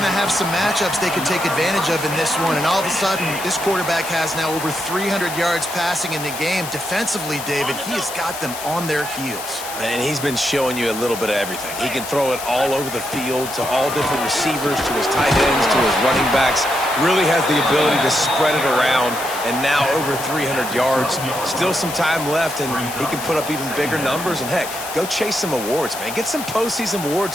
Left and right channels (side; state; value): left; noise; hiss, 9 dB below the sound